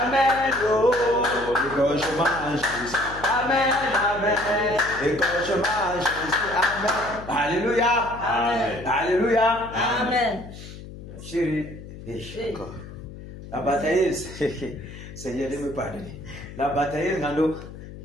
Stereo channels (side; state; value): left; noise; hum, 14 dB below the sound